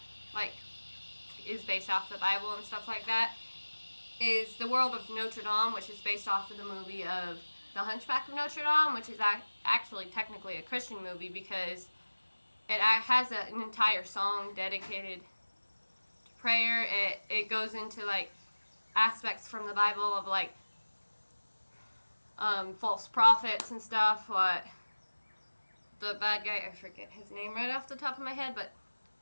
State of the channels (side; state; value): both; inverted; correlation -1.00